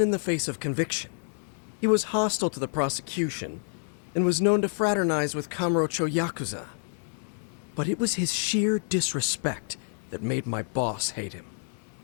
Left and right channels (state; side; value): silent; right; digital silence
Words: the face of conviction. He was hostile to the prosecution, and was known to fraternize with Kamurocho Yakuza. But it was his sheer disrespect that made my boss hate him.